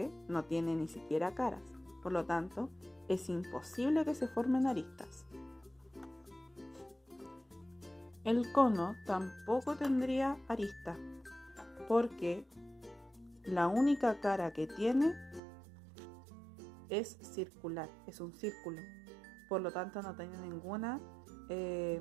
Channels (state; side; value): drops out; left; at 15.4 s